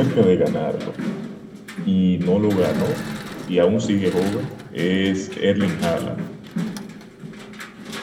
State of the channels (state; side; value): identical; both; correlation 1.00